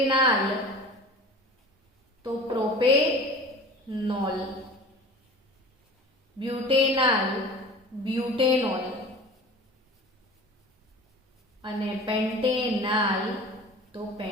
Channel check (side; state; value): both; normal; correlation 0.39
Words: તો પ્રોપેનોલ, બ્યુટેનાલ બ્યુટેનોલ અને પેન્ટેનાલ તો